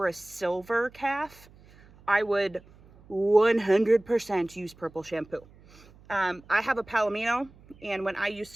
a silver calf, I would 100% use purple shampoo. I have a Palomino, and when I used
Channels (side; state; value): right; noise; hum, 25 dB below the sound